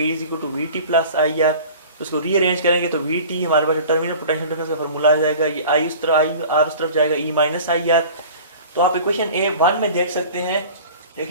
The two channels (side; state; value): both; inverted; correlation -0.42